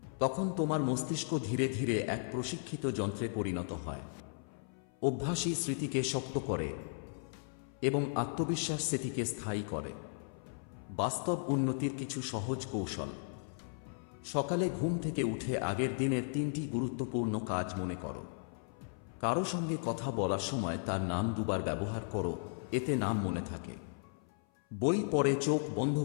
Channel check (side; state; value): right; silent; 54 dB below the other